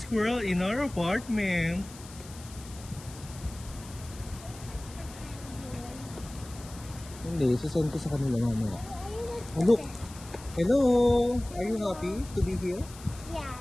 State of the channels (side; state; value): left; noise; hiss, 18 dB below the sound